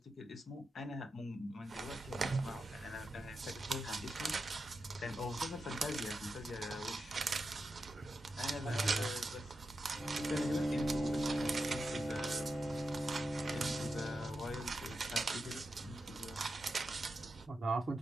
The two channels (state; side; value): normal; both; correlation 0.89